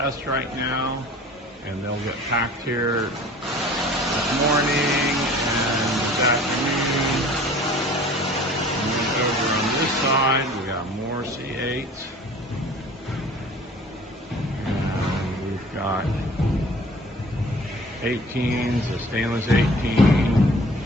right now, and they'll get packed here this morning and this afternoon. And then over on this side we got more C8s, and we've got 18s, a stainless 18.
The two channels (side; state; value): both; normal; correlation 0.47